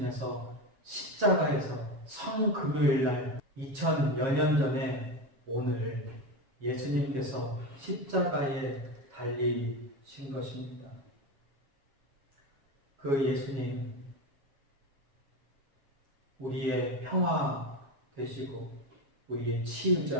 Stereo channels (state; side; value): late; left; 7.3 ms